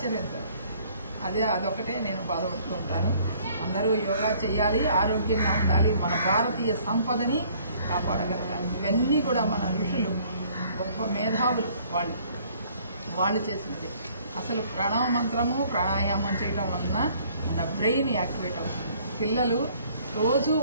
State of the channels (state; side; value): inverted; both; correlation -0.59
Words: అదొకటే నేను బాధపడుతూ ఉంటాను. అందరూ యోగా చేయాలి, ఆరోగ్యంగా ఉండాలి, మన భారతీయ సంపదని కాపాడగలగాలి. ఇవన్నీ కూడా మన ఋషులు, గొప్ప మేధావులు వాళ్ళు చేసినది. అసలు ప్రణవ మంత్రము, ప్రాణాయామం చేయడం వలన మన బ్రెయిన్ యాక్టివేట్ అవుతుంది. పిల్లలు రోజు